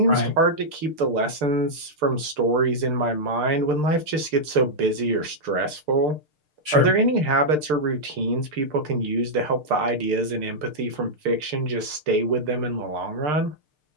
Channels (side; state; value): left; late; 6.7 ms